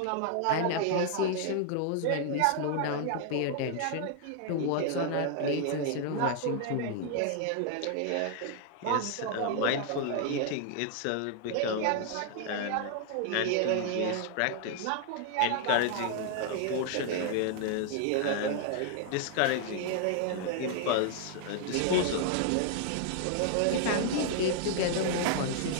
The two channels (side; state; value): both; different; correlation 0.00